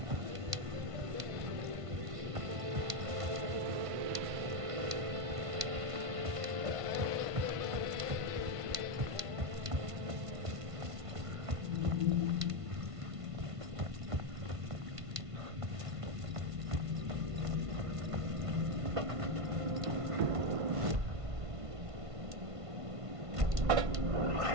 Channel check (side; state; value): left; late; 1.5 ms